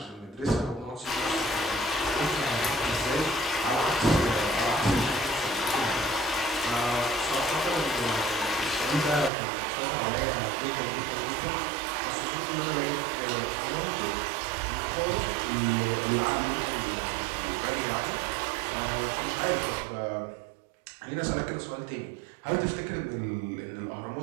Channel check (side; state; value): left; drops out; at 9.3 s